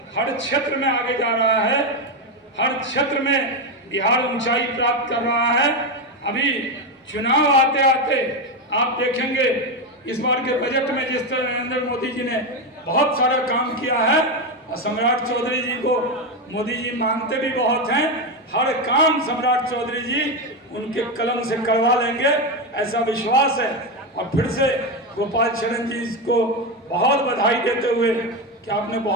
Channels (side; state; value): both; normal; correlation 0.11